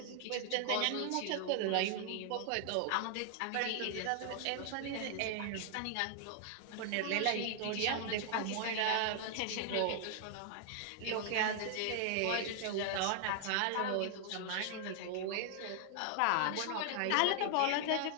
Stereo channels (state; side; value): different; both; correlation 0.00